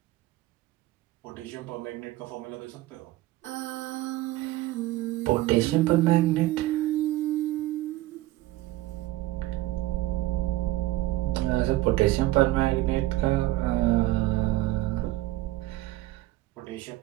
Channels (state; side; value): quieter; left; 17.0 dB